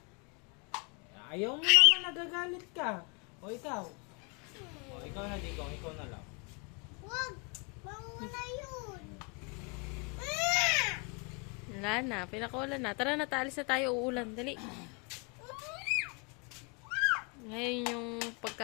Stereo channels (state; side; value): quieter; right; 32.8 dB